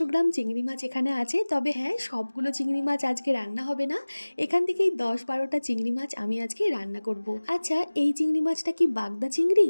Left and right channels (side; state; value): both; inverted; correlation -1.00